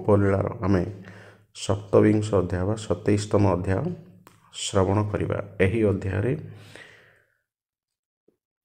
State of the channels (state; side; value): identical; both; correlation 1.00